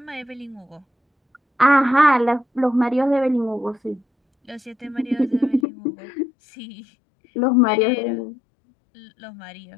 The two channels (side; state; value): right; drops out; at 5.7 s